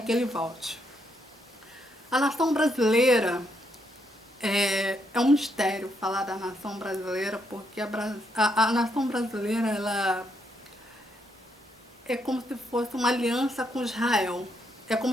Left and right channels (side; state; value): both; normal; correlation 0.76